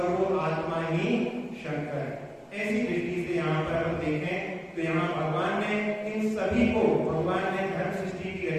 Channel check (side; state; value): both; identical; correlation 1.00